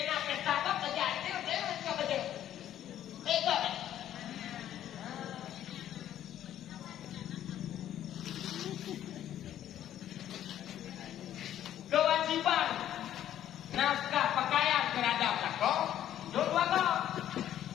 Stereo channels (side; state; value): right; quieter; 11.4 dB